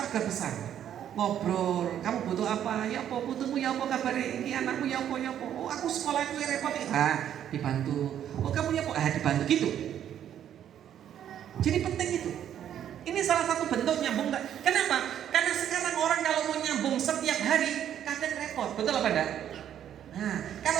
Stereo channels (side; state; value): left; quieter; 10.1 dB